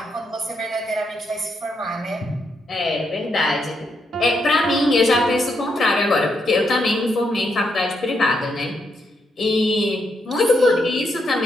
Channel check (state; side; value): normal; both; correlation 0.79